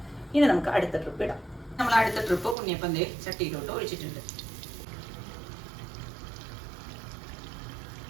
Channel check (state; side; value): drops out; left; at 2.6 s